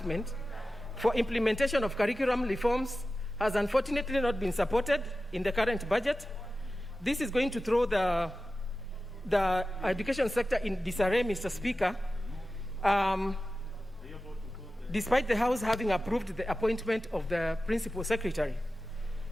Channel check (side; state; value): both; normal; correlation 0.94